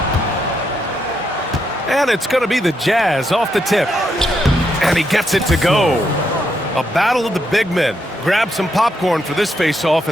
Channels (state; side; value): normal; both; correlation 0.79